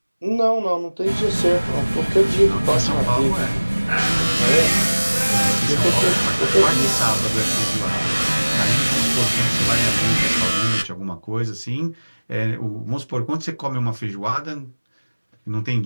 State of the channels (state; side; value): inverted; both; correlation -1.00